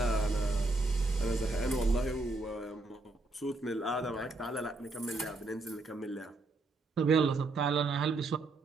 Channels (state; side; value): quieter; left; 3.2 dB